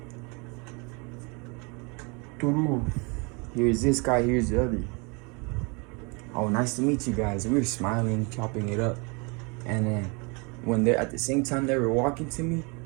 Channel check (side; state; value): left; quieter; 31.1 dB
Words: Here's this guy, here's the other. Oh, nice to meet you guys. We were smiling, chopping it up. And then when they're at the same time they were walking to me,